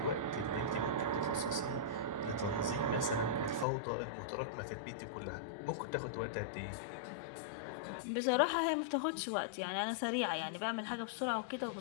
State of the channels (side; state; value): right; drops out; at 3.7 s